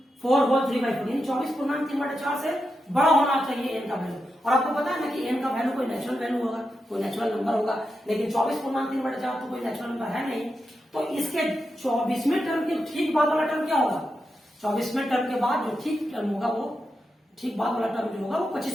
होल 3/4, यानी 24/3/4 से बड़ा होना चाहिए n का वैल्यू। और आपको पता है ना कि n का वैल्यू कोई नेचुरल वैल्यू होगा, कोई नेचुरल नंबर होगा, लेकिन 24/3/4 तो कोई नेचुरल नंबर है नहीं। तो इसके 24वें टर्म के ठीक बाद वाला टर्म क्या होगा, 24वें टर्म के बाद जो ठीक टर्म होगा वो ठीक बाद वाला टर्म जो होगा वो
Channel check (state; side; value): normal; both; correlation 0.87